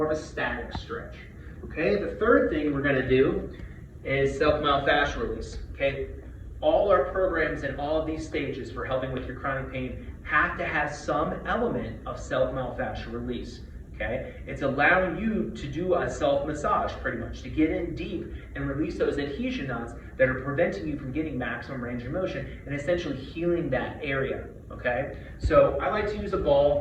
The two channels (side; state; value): both; identical; correlation 1.00